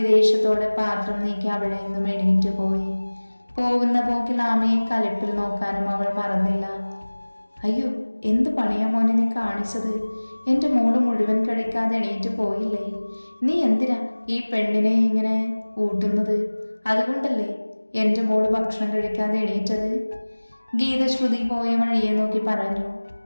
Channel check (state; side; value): inverted; both; correlation -1.00